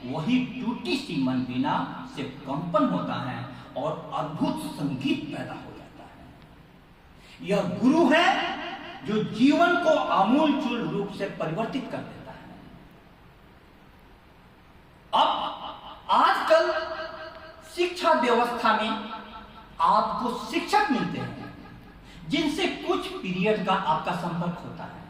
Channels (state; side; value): identical; both; correlation 1.00